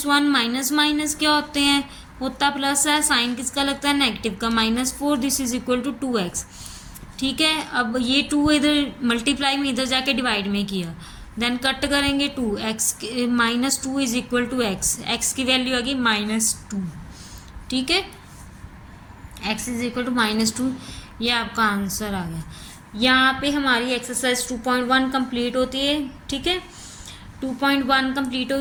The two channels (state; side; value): identical; both; correlation 1.00